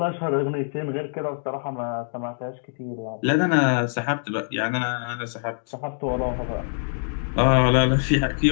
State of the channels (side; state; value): right; silent; digital silence